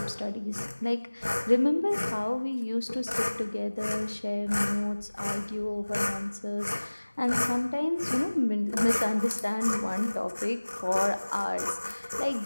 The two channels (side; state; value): both; inverted; correlation -1.00